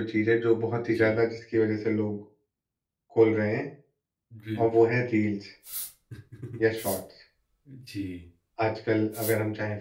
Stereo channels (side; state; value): both; identical; correlation 1.00